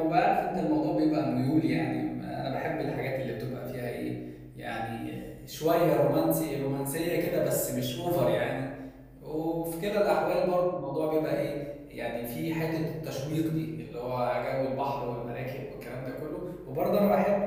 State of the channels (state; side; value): identical; both; correlation 1.00